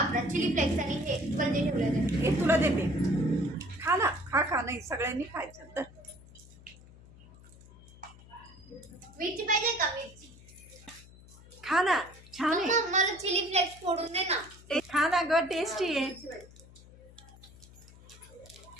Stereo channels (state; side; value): noise; left; hum, 21 dB below the sound